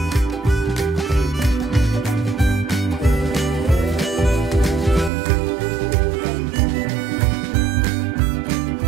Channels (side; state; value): left; drops out; at 5.1 s